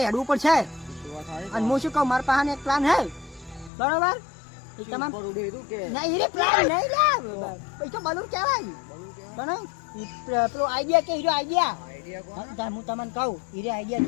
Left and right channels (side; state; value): right; drops out; at 3.7 s